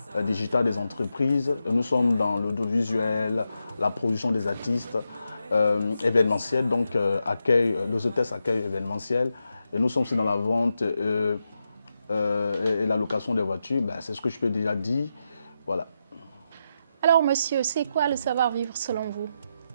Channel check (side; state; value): both; inverted; correlation -0.86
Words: digitale des entreprises. Nous sommes dans l'audiovisuel, la production des artistes, événementiel, donc les hôtesses accueil événementiel. Et nous sommes aussi dans la vente et la location des voitures, c'est ce que je peux déjà dire. Voilà. Alors monsieur, c'est quoi le savoir-vivre selon vous?